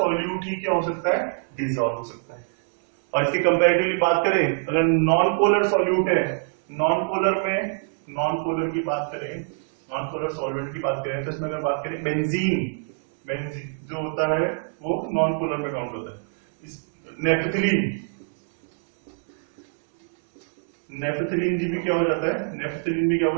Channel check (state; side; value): silent; left; 62 dB below the other